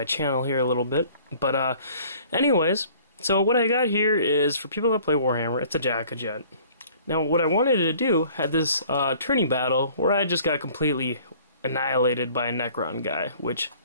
channel here a little bit. But anyways, so what I got here is for people that play Warhammer, it's a DakkaJet. Now what I wanted to do had this tourney battle where I just got completely annihilated by a Necron guy, which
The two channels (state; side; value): inverted; both; correlation -0.53